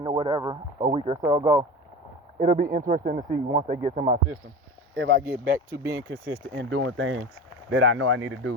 or whatever a week or so ago, it'll be interesting to see once they get to my system if I get back to being consistent in doing things that I know I need to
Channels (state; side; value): normal; both; correlation 0.30